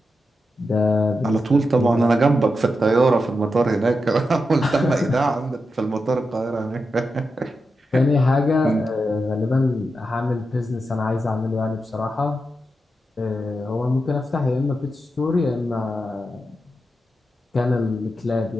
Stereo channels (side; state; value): both; normal; correlation 0.88